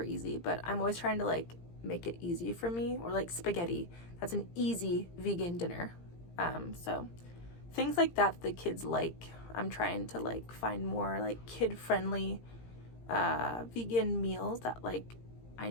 easy. But I'm always trying to like make it easy for me. Or like spaghetti, that's an easy vegan dinner. So things like that the kids like, I'm trying to like find more like kid-friendly vegan meals that like I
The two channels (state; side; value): late; right; 17 ms